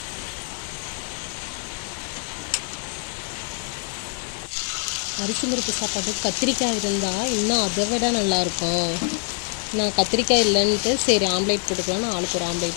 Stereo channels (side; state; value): right; quieter; 39.8 dB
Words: அரிசி பருப்பு சாப்பாடு கத்திரிக்காய் இருந்தால் இன்னும் அதை விட நல்லாயிருக்கும். நான் கத்திரிக்காய் இல்லைன்ட்டு சரி ஆம்லேட் போட்டுக்கலான்னு ஆளுக்கு ஒரு